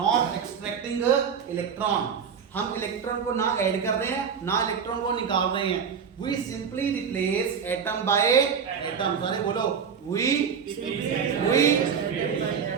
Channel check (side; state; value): left; quieter; 6.8 dB